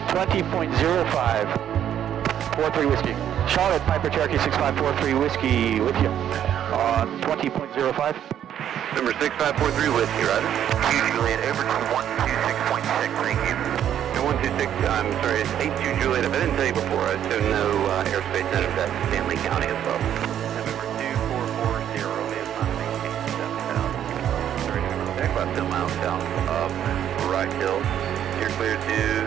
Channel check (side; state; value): left; quieter; 10.2 dB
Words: 20.05, 43 Whiskey. Charlotte, Piper Cherokee 6543 Whiskey with you on 20.05. Number 6543 Whiskey, roger. Juliet, over to 126.6, thank you. No, 126, I'm sorry, it's 82 Juliet. If I didn't tell you before, I assume no airspace natives at Stanley County as well. November 2440, Romeo, climb maintain 7,000. Sorry, November, about 10 miles south of Wright Hill. You're clear to